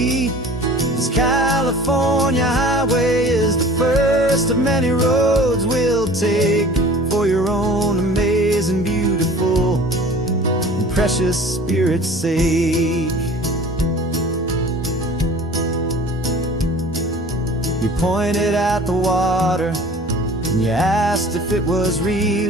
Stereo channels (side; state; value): both; normal; correlation 0.44